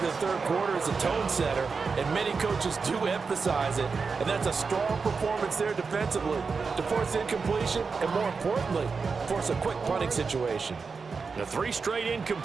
the third quarter as a tone setter, and many coaches do emphasize it, and that's a strong performance there defensively to force incompletion and, more importantly, force a quick punting situation. The 3 straight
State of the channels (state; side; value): quieter; left; 4.9 dB